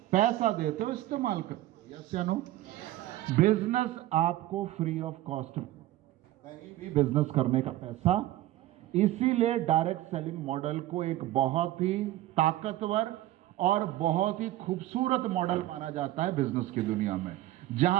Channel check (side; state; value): left; quieter; 15.2 dB